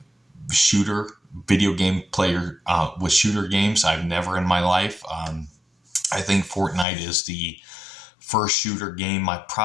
shooter, video game player with shooter games. I've never in my life. I think Fortnite is the first shooter game I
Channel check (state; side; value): drops out; right; at 6.9 s